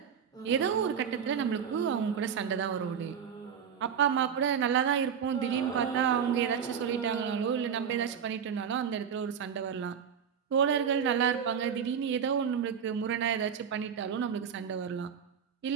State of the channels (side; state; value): left; quieter; 7.5 dB